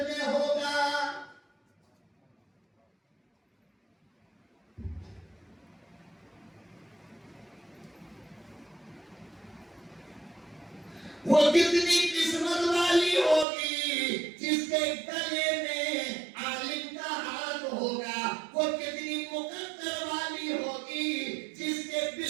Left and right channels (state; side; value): drops out; left; at 13.5 s